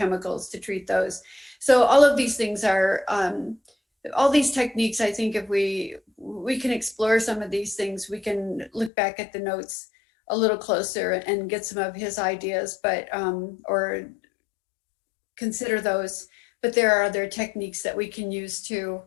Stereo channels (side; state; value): right; drops out; at 8.9 s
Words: to treat those. So all of these things are, all these techniques, I think if we can explore some of these things, we can look back at the notes a little closer and get some of his ideas, but or consider those. But there are other techniques that we can use too.